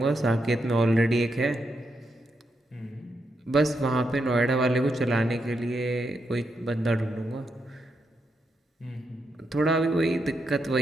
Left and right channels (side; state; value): both; normal; correlation 0.82